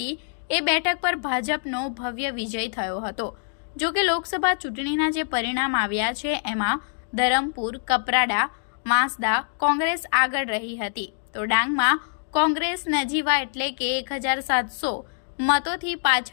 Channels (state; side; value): silent; right; digital silence